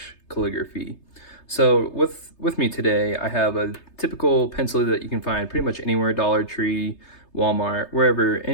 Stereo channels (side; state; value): right; late; 3.3 ms